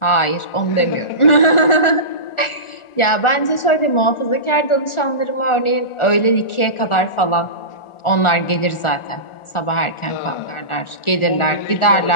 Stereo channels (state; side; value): late; right; 1.4 ms